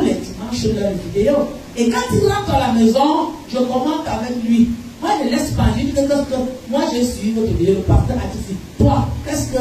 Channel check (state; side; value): identical; both; correlation 1.00